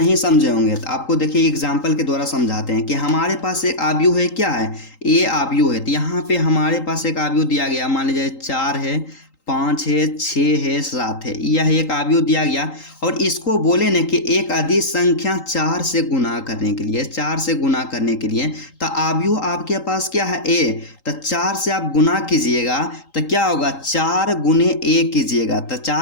समझे होंगे, तो आपको देखिए एग्जाम्पल के द्वारा समझाते हैं कि हमारे पास एक अवयव है, क्या है ए अवयव है, तो यहाँ पे हमारे पास एक अवयव दिया गया, मान लीजिए 4 है, 5 है, 6 है, 7 है, यह एक अवयव दिया गया और इसको बोले न कि एक अदिश संख्या 4 से गुना करने के लिए, 4 से गुना करने के लिए, तो अवयव आपके पास क्या है ए, तो 4 से आप गुना कीजिएगा तो क्या होगा 4 गुने ए कीजिएगा, तो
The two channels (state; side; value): late; right; 3.8 ms